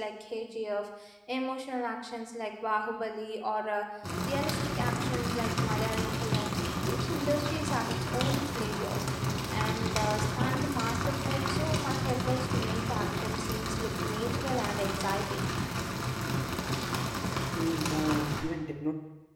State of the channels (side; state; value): both; identical; correlation 1.00